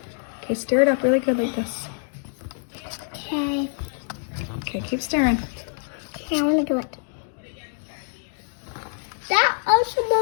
Okay, stir it up really good like this. Okay. Okay, keep stirring. Okay, I want to do it. That also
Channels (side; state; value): right; silent; 62 dB below the other